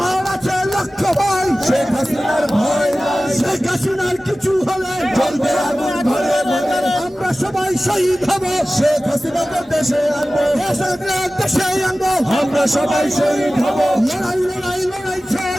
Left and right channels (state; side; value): normal; both; correlation 0.96